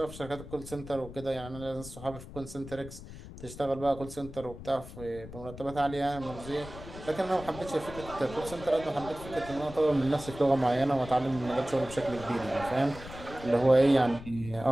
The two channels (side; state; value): left; noise; rumble, 14 dB below the sound